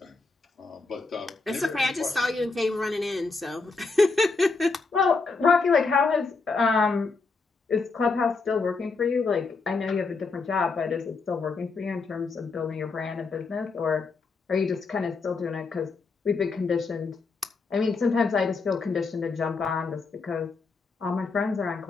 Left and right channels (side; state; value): right; quieter; 4.2 dB